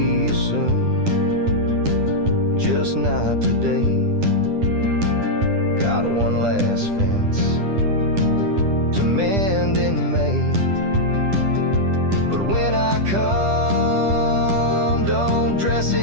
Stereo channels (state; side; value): late; left; 10 ms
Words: you soon, just not today. Got one last fence to mend in May, but when I come, don't dress